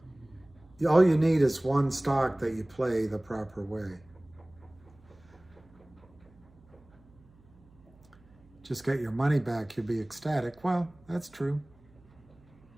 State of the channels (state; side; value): noise; right; hum, 27 dB below the sound